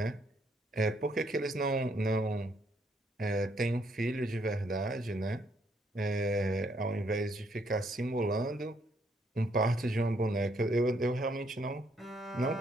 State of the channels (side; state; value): both; normal; correlation 0.71